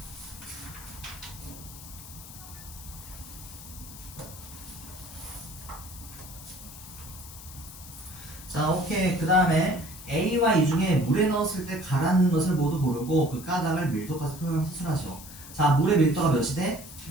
자, 오케이. 그 다음에 A와 E 중에 물에 넣었을 때 가라앉는 것을 모두 고르고 그 가닥을 밀도까지 표현해서 수술하시오. 자, 물의 밀도가 몇이 돼?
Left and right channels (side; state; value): left; noise; hiss, 15 dB below the sound